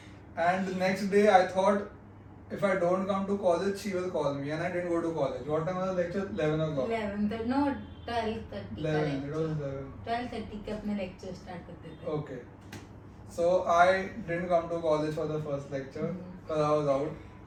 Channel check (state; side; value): identical; both; correlation 1.00